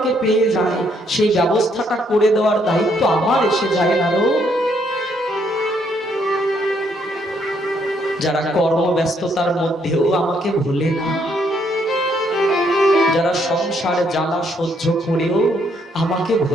পেয়ে যায়, সেই ব্যবস্থাটা করে দেওয়ার দায়িত্ব আমার এসে যায়। নারদ, যারা কর্মব্যস্ততার মধ্যেও আমাকে ভুলে না, যারা সংসারে জ্বালা সহ্য করেও আমাকে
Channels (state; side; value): normal; both; correlation 0.71